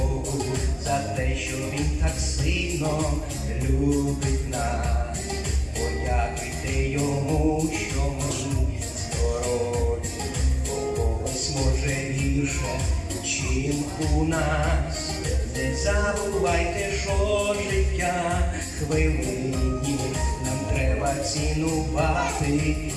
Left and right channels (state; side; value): identical; both; correlation 1.00